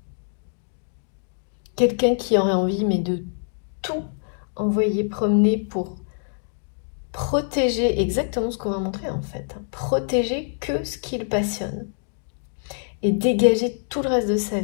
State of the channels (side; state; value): right; silent; digital silence